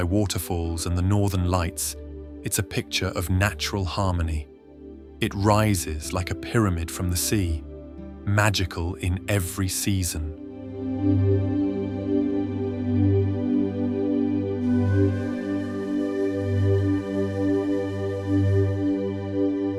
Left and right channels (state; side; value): identical; both; correlation 1.00